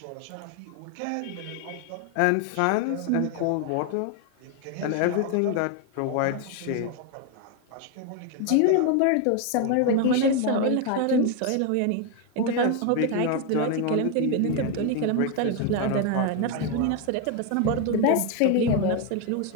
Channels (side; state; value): both; different; correlation 0.01